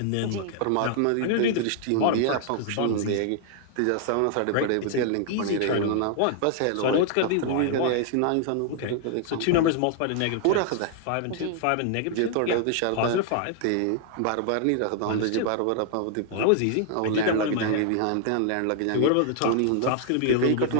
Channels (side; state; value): both; different; correlation 0.00